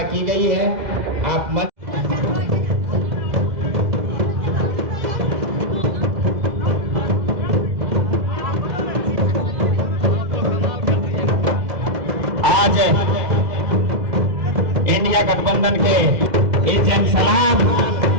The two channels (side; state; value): left; late; 2.0 ms